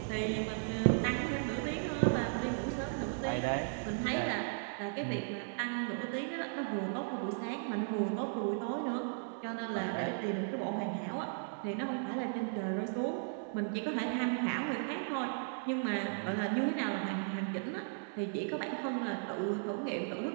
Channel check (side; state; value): left; silent; digital silence